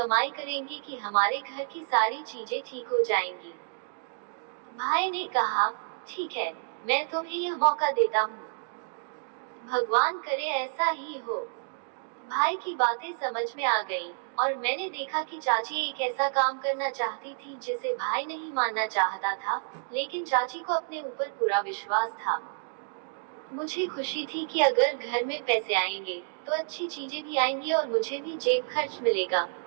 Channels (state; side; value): silent; left; digital silence